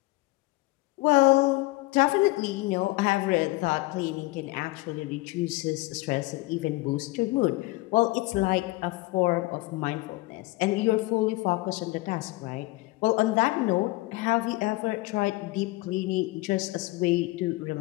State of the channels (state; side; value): quieter; right; 21.2 dB